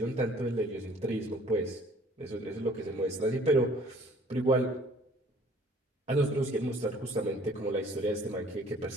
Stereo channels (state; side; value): normal; both; correlation 0.55